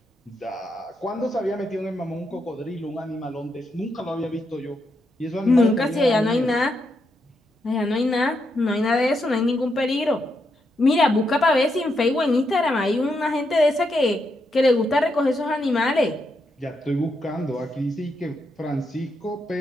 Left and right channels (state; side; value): normal; both; correlation 0.81